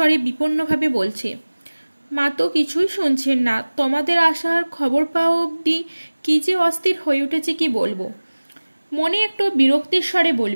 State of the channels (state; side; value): inverted; both; correlation -1.00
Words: বিপন্নভাবে বলছে, মা তো কিছুই শুনছেন না। তোমাদের আসার খবর পাওয়া অবধি কি যে অস্থির হয়ে উঠেছে কি বলবো। মনে একটু বিরক্তির স্বরে